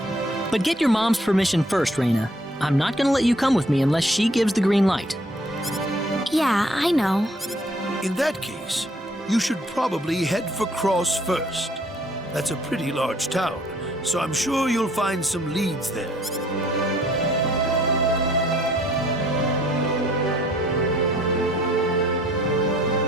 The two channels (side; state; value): both; normal; correlation 0.61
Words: But get your mom's permission first, Reyna. I'm not gonna let you come with me unless she gives the green light. Yeah, I know. In that case, you should probably head for Cross first. That's a pretty large town, so I'm sure you'll find some leads there.